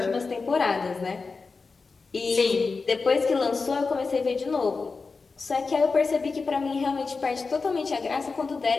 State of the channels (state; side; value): quieter; right; 4.4 dB